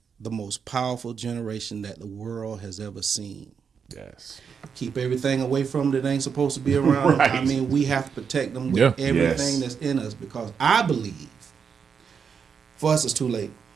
the most powerful generation that the world has ever seen. Yes. Keep everything away from them that ain't supposed to be around. Right. I mean, we have to protect them with Yeah. everything Yes. that's in us, because I believe for us it's too late.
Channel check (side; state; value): left; quieter; 6.5 dB